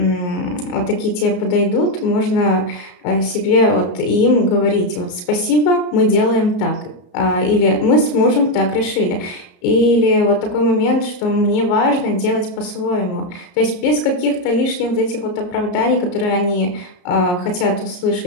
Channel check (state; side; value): late; right; 34 ms